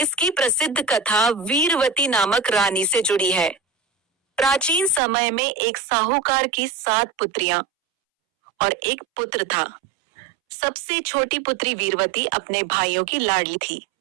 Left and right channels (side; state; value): left; drops out; at 5.0 s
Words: प्रसिद्ध कथा वीरवती नामक रानी से जुड़ी है। प्राचीन समय में एक साहूकार की 7 पुत्रियां और एक पुत्र था। सबसे छोटी पुत्री वीरवती अपने भाइयों की लाडली थी।